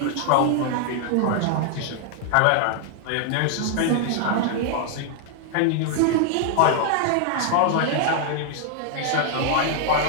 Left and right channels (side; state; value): both; different; correlation 0.00